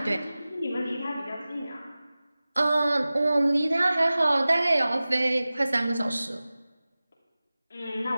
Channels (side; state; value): both; inverted; correlation -0.97